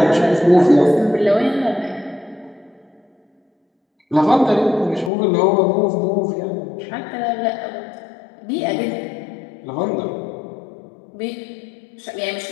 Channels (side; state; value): right; drops out; at 5.1 s